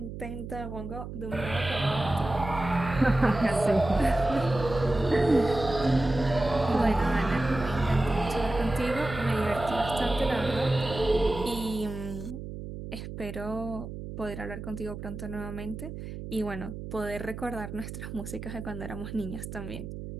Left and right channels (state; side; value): noise; right; hum, 9 dB below the sound